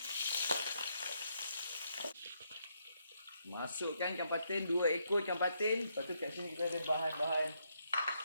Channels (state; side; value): inverted; both; correlation -0.76